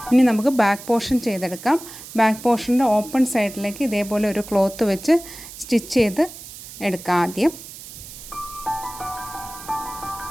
ഇനി നമുക്ക് ബാക്ക് പോർഷൻ ചെയ്തെടുക്കാം. ബാക്ക് പോർഷൻ്റെ ഓപ്പൺ സൈഡിലേക്ക് ഇതേപോലെ ഒരു ക്ലോത്ത് വെച്ച് സ്റ്റിച്ച് ചെയ്ത് എടുക്കാം ആദ്യം.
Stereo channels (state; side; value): noise; right; hiss, 14 dB below the sound